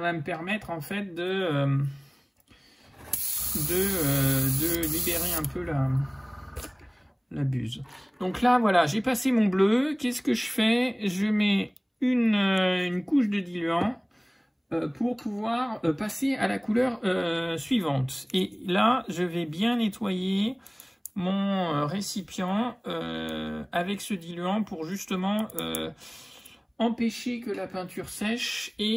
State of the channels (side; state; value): both; identical; correlation 1.00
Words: me permettre en fait de libérer un peu la buse. Donc là, voilà, j'ai passé mon bleu. Qu'est-ce que je fais? Je mets une couche de diluant pour pouvoir passer à la couleur suivante. Et là, je vais bien nettoyer mon récipient avec ce diluant pour justement empêcher que la peinture sèche